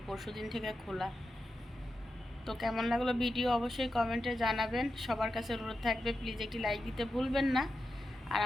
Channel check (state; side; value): normal; both; correlation 0.89